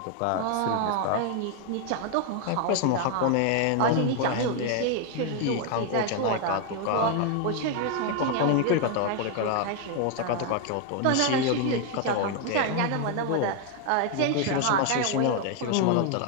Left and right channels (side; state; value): both; different; correlation 0.01